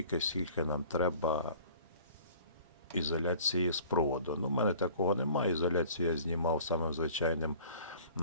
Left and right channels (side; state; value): both; inverted; correlation -0.48